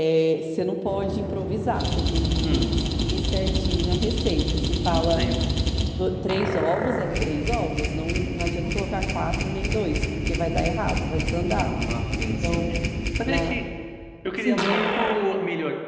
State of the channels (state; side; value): identical; both; correlation 1.00